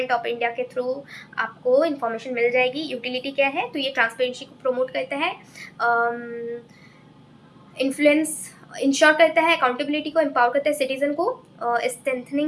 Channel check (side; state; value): both; identical; correlation 1.00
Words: ऑफ इंडिया के थ्रू आपको इंफॉर्मेशन मिल जाएगी। यूटिलिटी क्या है, तो ये ट्रांसपेरेंसी को प्रमोट करता है, इन्फ्लुएंस इंश्योर करता है, अकाउंटेबिलिटी को एम्पावर करता है सिटीजन को,